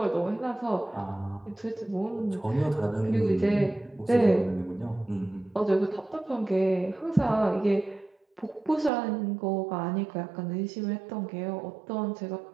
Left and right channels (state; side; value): drops out; left; at 8.9 s